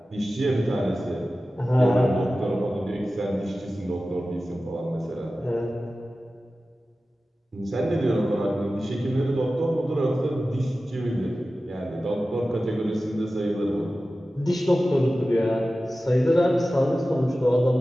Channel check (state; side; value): normal; both; correlation 0.95